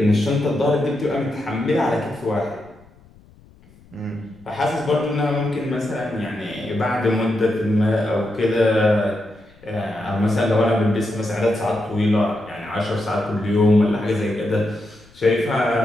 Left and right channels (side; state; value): left; noise; rumble, 27 dB below the sound